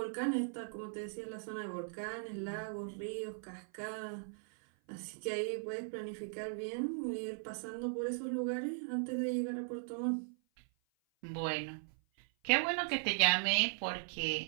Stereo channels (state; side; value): silent; left; 52 dB below the other